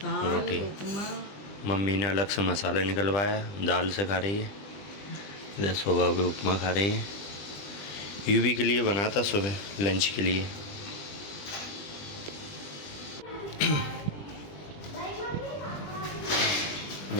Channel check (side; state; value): right; late; 20 ms